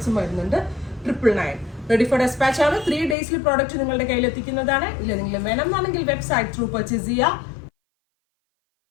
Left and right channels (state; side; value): drops out; right; at 3.2 s